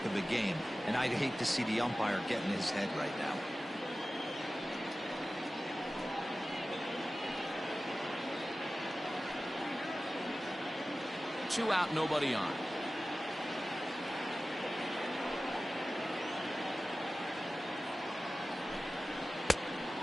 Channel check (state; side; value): normal; both; correlation 0.96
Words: of a game, and I'd hate to see the umpire get in his head right now. Two out, nobody on.